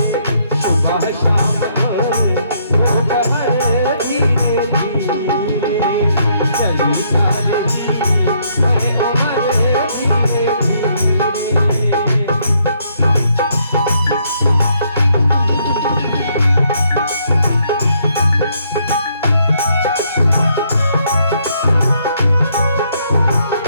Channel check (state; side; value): inverted; both; correlation -0.71